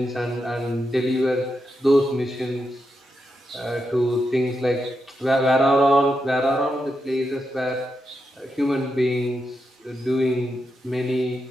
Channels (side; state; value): both; normal; correlation 0.85